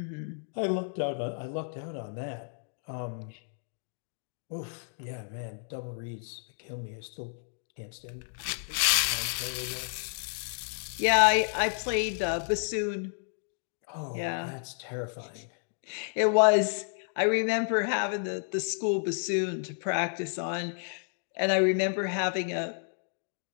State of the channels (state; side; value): silent; right; digital silence